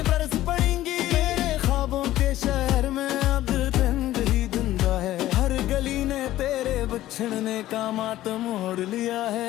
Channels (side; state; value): right; quieter; 14.7 dB